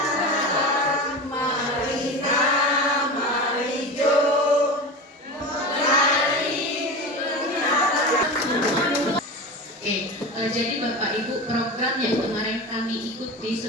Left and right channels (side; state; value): both; normal; correlation 0.27